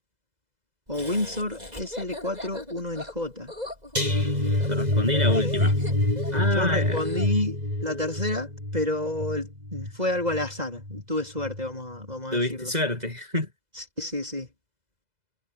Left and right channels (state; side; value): late; left; 2.0 ms